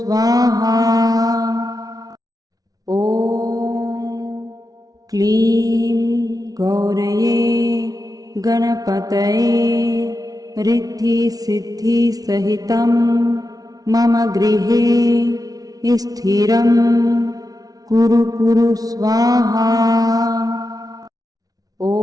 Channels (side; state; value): left; late; 0.18 ms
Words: ॐ क्लीं गौरये गणपतये रिद्धिसिद्धिसहितं मम गृहे स्थिरं कुरु कुरु स्वाहा। ॐ